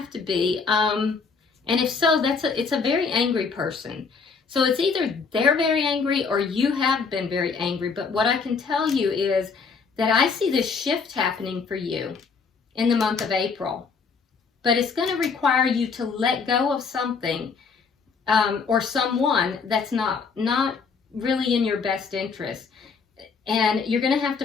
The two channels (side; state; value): right; quieter; 5.2 dB